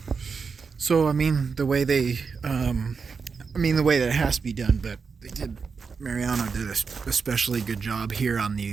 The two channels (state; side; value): quieter; left; 5.3 dB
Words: So I mean, the way that it has to be done, but Mariano did a especially good job here on